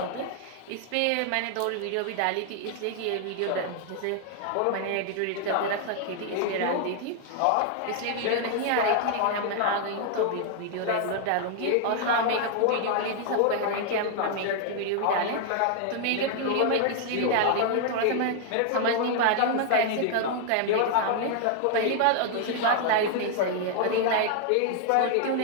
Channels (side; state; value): both; different; correlation 0.00